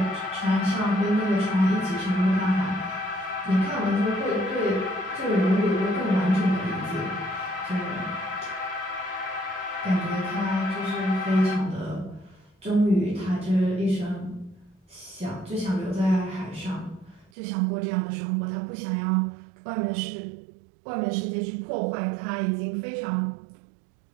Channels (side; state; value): left; drops out; at 17.3 s